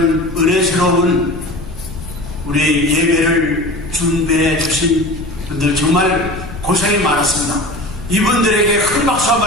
은혜스러운 우리 예배를 준비해 주신 분들 정말 고생이 많았습니다. 이분들에게 큰 박수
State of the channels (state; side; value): noise; left; rumble, 12 dB below the sound